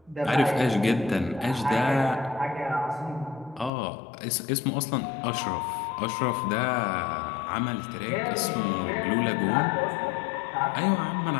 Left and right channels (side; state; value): right; drops out; at 3.7 s